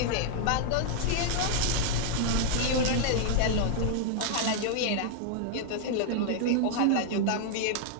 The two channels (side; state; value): both; different; correlation 0.00